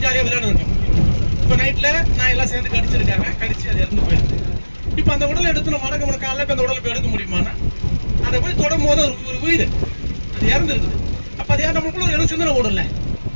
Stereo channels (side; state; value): both; inverted; correlation -1.00